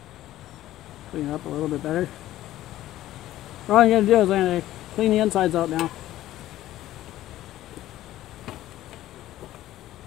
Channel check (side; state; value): right; quieter; 14.3 dB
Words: Clean it up a little bit better. What I'm going to do is I'm going to clean the insides out now.